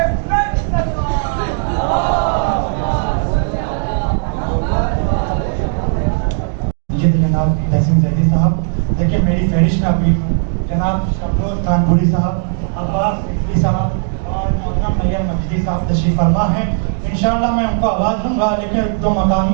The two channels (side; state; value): left; silent; 64 dB below the other